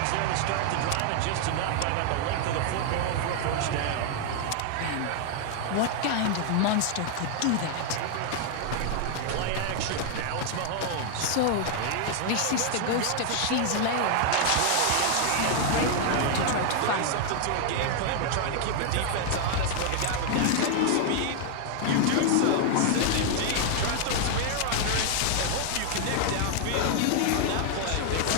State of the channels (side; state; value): both; different; correlation 0.00